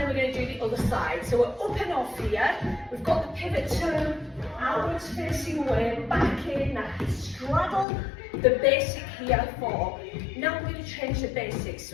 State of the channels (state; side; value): drops out; right; at 7.9 s